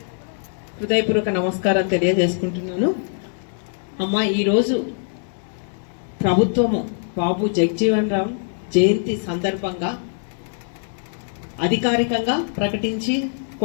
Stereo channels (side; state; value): right; silent; digital silence